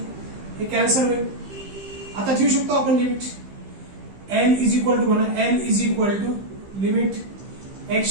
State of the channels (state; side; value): late; left; 15 ms